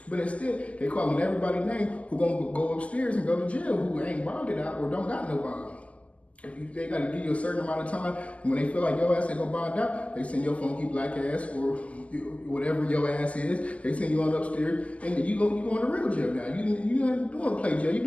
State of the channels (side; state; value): right; late; 0.066 ms